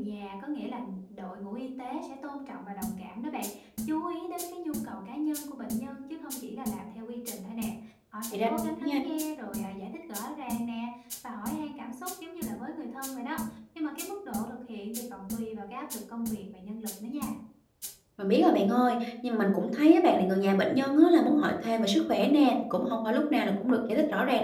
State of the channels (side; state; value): both; identical; correlation 1.00